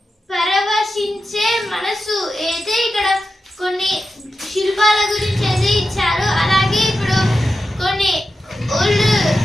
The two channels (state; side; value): normal; both; correlation 0.90